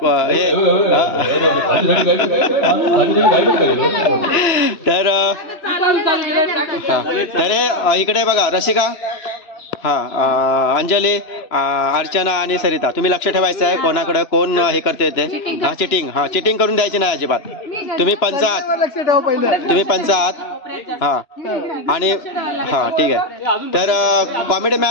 तर इकडे बघा रसिका, हा अंजली, अर्चना आणि सरिता, तुम्ही लक्ष ठेवायचं आहे कोणाकडे कोण हे करते ते. हा चिटिंग, हा चिटिंग करून द्यायची नाही अजिबात. तुम्ही पंच आहात, हा. आणि हा ठीक आहे. तर कॉमेडी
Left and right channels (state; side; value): late; right; 2.9 ms